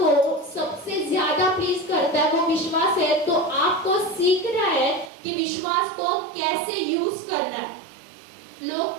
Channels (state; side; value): drops out; left; at 5.1 s